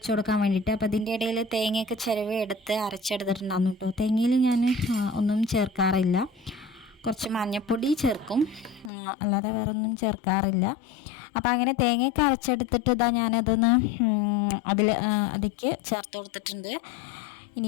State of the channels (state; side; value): drops out; right; at 8.9 s